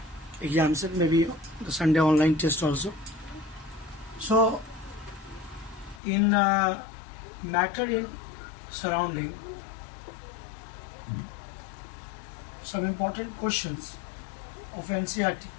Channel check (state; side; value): drops out; right; at 6.0 s